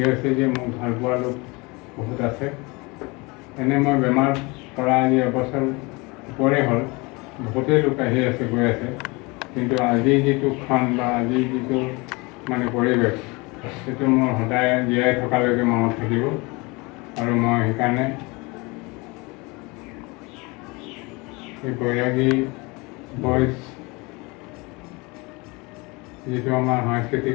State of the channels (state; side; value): quieter; right; 26.2 dB